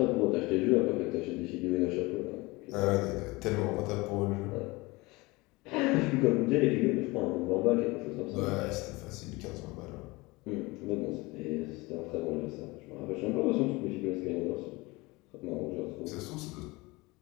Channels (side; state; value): right; quieter; 23.1 dB